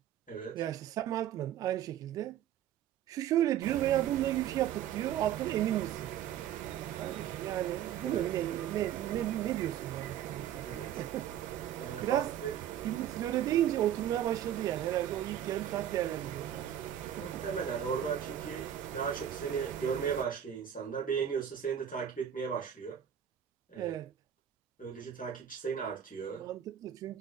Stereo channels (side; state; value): left; quieter; 10.4 dB